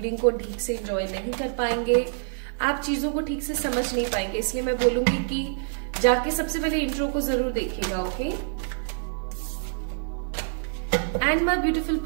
को ठीक से एंजॉय नहीं कर पाएंगे, आप चीजों को ठीक से समझ नहीं पाएंगे। इसलिए मैं बोलूंगी कि जाके सबसे पहले इंट्रो को जरूर देखिएगा, okay. And my beautiful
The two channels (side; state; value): left; silent; digital silence